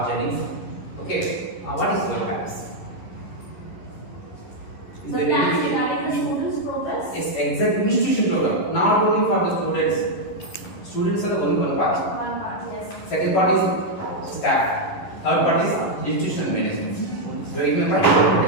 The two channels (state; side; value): late; right; 11 ms